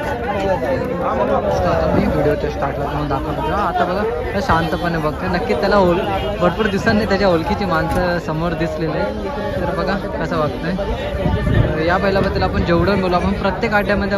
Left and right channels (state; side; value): identical; both; correlation 1.00